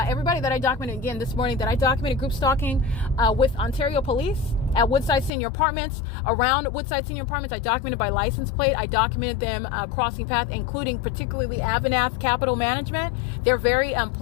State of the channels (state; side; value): drops out; right; at 5.3 s